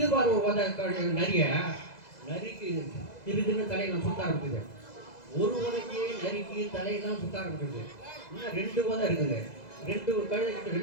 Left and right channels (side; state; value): right; late; 2.0 ms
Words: பாரு ஒரு உதை நரிக்கு திருதுன்னு தலையெல்லாம் சுத்த ஆரம்பிக்குது. ஒரு உதைக்கு நரிக்கு தலையெல்லாம் சுத்த ஆரம்பிக்குது. இன்னும் 2 உதை இருக்குது. 2 கழுதை கிட்ட